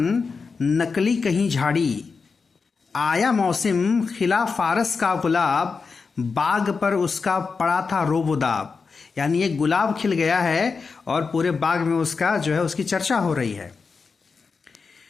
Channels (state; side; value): quieter; right; 4.9 dB